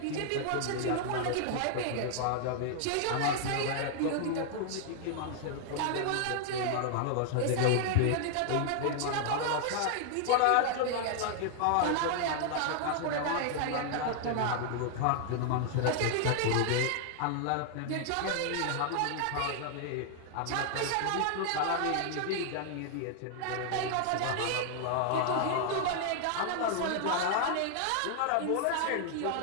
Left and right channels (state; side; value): different; both; correlation 0.00